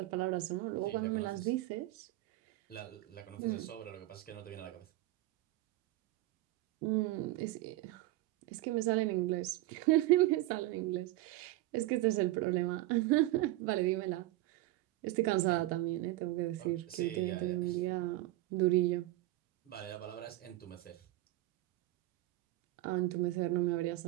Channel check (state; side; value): quieter; left; 17.3 dB